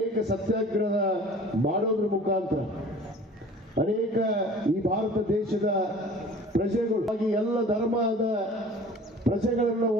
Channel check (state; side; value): normal; both; correlation 0.46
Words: ಸತ್ಯಾಗ್ರಹ ಮಾಡೋದ್ರ ಮುಖಾಂತರ ಅನೇಕ ಈ ಭಾರತ ದೇಶದ ಪ್ರಜೆಗಳು, ಎಲ್ಲ ಧರ್ಮದ ಪ್ರಜೆಗಳನ್ನು